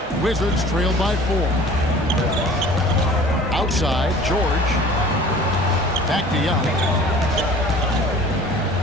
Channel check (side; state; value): both; normal; correlation 0.46